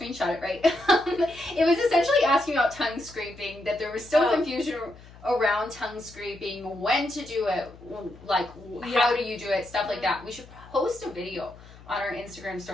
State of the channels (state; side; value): noise; left; hum, 21 dB below the sound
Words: it right. It was essentially asking about tongue scraping, that there was still confusion around tongue scraping, when to do it, like how do you do it, stuff like that. We should post a video on our Instagram